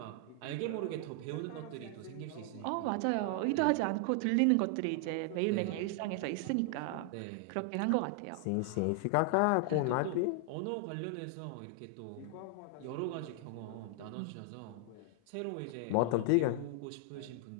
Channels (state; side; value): different; both; correlation 0.00